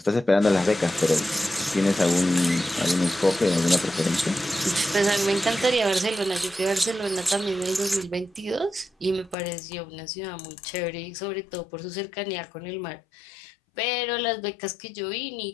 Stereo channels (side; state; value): right; drops out; at 9.3 s